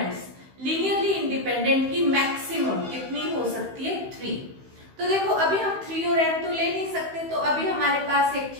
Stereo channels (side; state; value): left; late; 15 ms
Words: linearly independent की मैक्सिमम कितनी हो सकती है, 3। तो देखो अभी हम 3 और n तो ले नहीं सकते, तो अभी हमारे पास एक